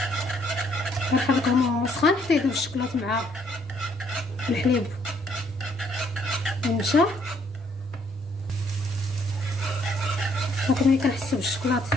كنحركهم وهو سخون حتى يذوب الشوكولاط مع الحليب والنشا. صافي ملي كنحسو بالشوكولاط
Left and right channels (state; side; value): normal; both; correlation 0.67